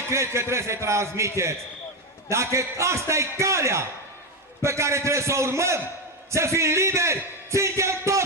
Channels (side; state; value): both; normal; correlation 0.11